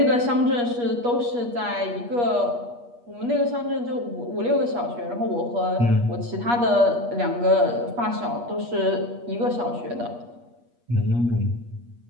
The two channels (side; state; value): left; late; 8.4 ms